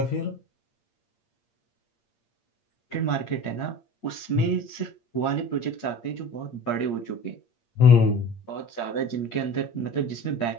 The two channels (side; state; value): right; late; 8.6 ms